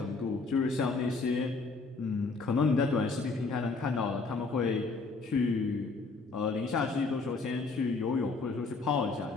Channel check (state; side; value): quieter; right; 4.0 dB